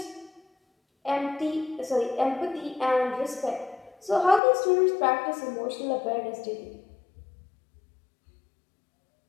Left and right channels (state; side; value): drops out; right; at 4.4 s